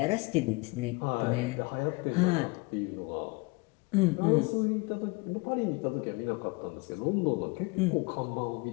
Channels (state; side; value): quieter; right; 26.6 dB